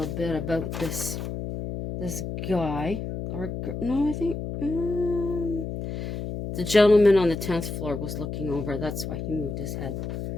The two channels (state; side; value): noise; left; hum, 5 dB below the sound